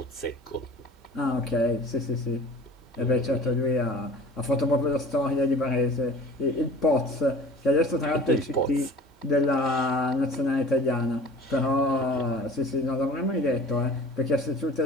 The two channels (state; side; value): normal; both; correlation 0.43